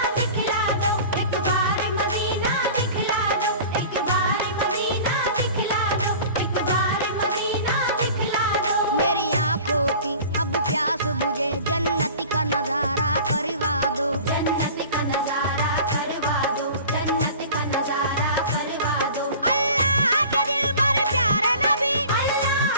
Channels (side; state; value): both; inverted; correlation -0.41